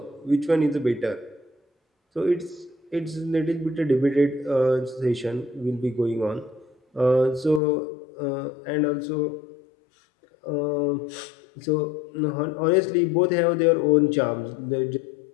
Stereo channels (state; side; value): drops out; right; at 7.6 s